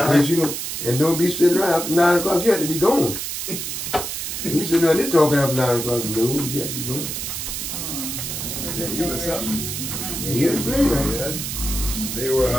you know, and don't be sitting around after 9 o'clock. You have to be gone. You sitting around there talking after 9 o'clock. No, you have to be gone. Yeah, you was something. Yeah, he was playing right. Yeah. They were.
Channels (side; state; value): right; noise; hiss, 4 dB below the sound